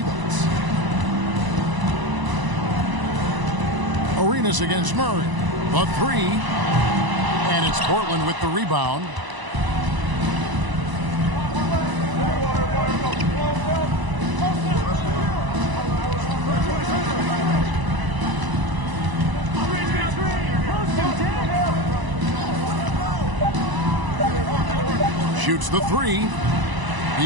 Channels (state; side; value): late; left; 1.0 ms